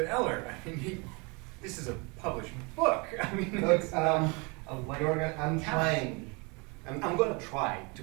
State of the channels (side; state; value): left; quieter; 29.9 dB